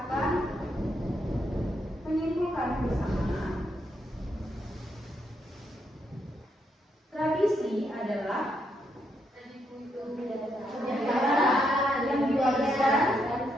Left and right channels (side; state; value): both; normal; correlation 0.78